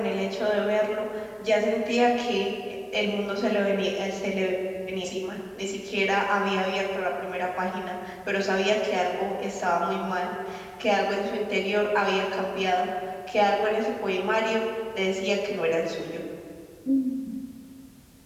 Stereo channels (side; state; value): both; identical; correlation 1.00